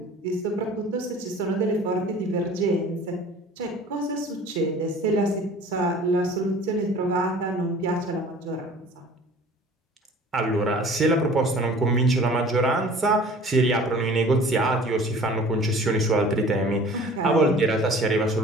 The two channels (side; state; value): both; normal; correlation 0.47